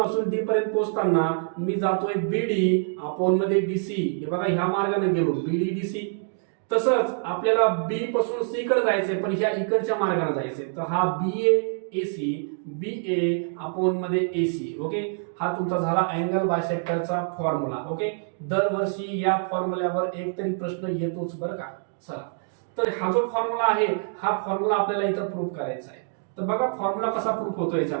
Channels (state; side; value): silent; left; digital silence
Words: डी पर्यंत पोहोचताना मी जातोय बीडी अपॉन मध्ये डीसी. हे बघा ह्या मार्गाने गेलो बीडी डीसी. तसंच आपल्याला बी पासून सी कडे जायचंय, पण ह्या इकडच्या मार्गाने जायचंय. तर हा बी ए अपॉन मध्ये एसी. ओके, हा तुमचा झाला अँगल बायसेक्टरचा फॉर्म्युला. ओके, दरवर्षी या फॉर्म्युल्यावर एक तरी प्रश्न येतोच बरं का. चला, तर हा जो फॉर्म्युला आहे, हा फॉर्म्युला आपल्याला इथं प्रूव्ह करायचा आहे. तर बघा फॉर्म्युला कसा प्रूव्ह होतो